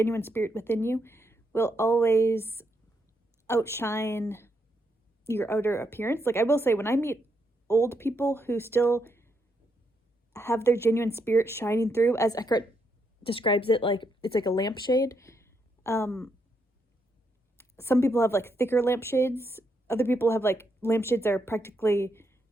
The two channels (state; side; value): normal; both; correlation 0.78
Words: spirit within you, will always outshine your outer appearance. Like, I will say, when I meet old people who still have their genuine spirit shining through, as Eckhart describes it, like, it's like a lampshade. Some people have like thicker lampshades. Other people have like lampshades that are practically